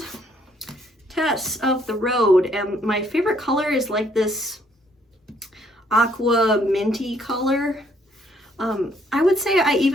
Tess of the Road, and my favorite color is like this aqua minty color. I would say I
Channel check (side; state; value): both; normal; correlation 0.67